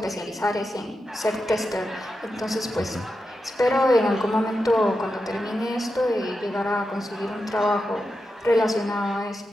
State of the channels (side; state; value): both; normal; correlation 0.89